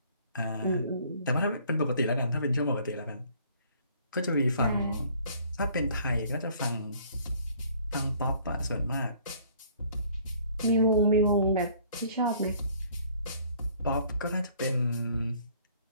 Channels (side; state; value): both; inverted; correlation -0.58